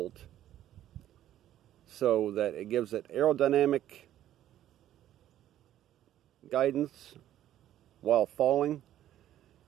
so that it gives it aerodynamic guidance while falling,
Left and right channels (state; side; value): quieter; left; 12.3 dB